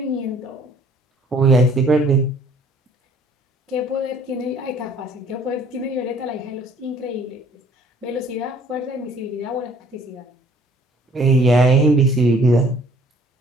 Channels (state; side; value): normal; both; correlation 0.57